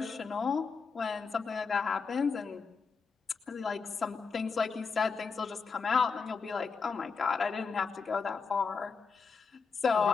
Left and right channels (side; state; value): right; quieter; 5.1 dB